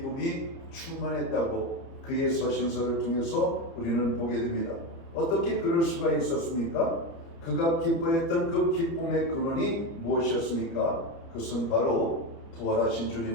충만했다고 그의 서신서를 통해서 우리는 보게 됩니다. 어떻게 그럴 수가 있었습니까? 그가 기뻐했던 그 기쁨의 근원이 무엇이었습니까? 그것은 바로 부활하신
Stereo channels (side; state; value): right; late; 30 ms